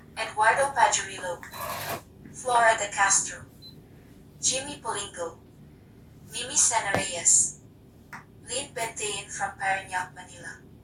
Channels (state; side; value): identical; both; correlation 1.00